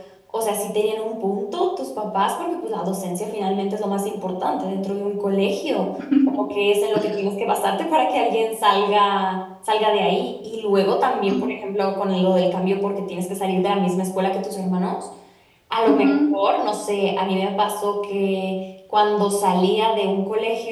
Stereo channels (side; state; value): both; identical; correlation 1.00